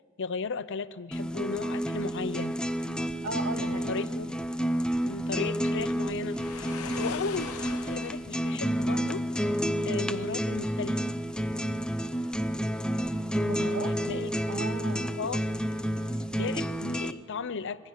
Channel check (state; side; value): normal; both; correlation 0.71